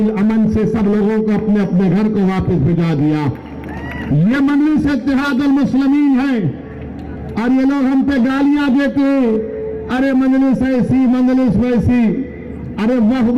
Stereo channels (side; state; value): both; identical; correlation 1.00